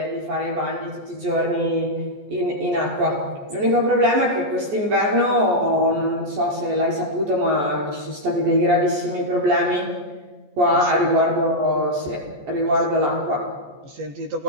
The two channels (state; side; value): late; left; 14 ms